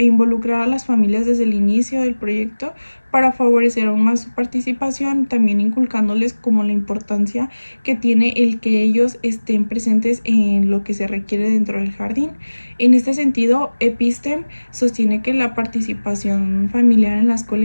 involucrar a las familias desde el inicio del proyecto para favorecer aún más su participación, también inculcándoles como la importancia que tiene el que ellos estén presentes en lo que se requiere dentro del jardín. En este sentido, Epistem sostiene que la participación familiar en la escuela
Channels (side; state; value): both; inverted; correlation -1.00